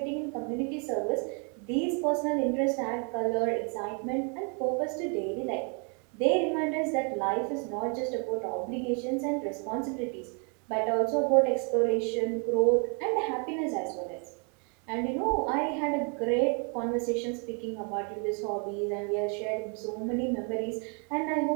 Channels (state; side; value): quieter; left; 37.5 dB